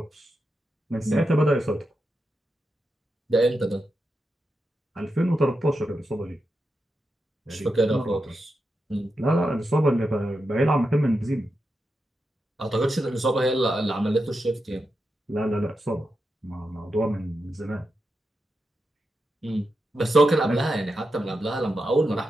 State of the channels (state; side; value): normal; both; correlation 0.87